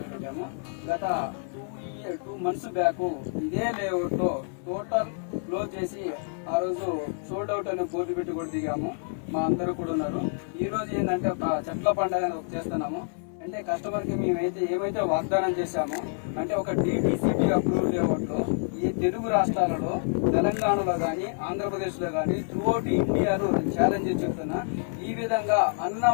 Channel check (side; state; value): right; silent; 60 dB below the other